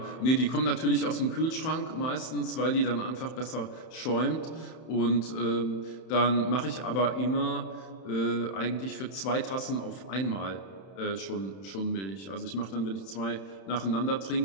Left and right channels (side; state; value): right; late; 31 ms